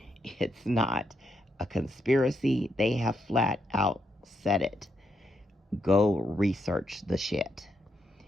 It's not a conspiracy. They have flat out said it. Go research the shit.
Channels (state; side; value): normal; both; correlation 0.80